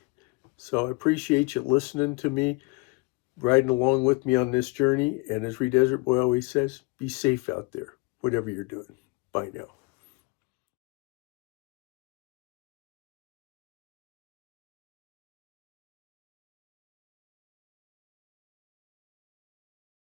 So I appreciate you listening to me, riding along with me on this journey. And as Desert Boy always says, be safe out there, whatever you're doing. Bye now.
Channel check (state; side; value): quieter; right; 26.4 dB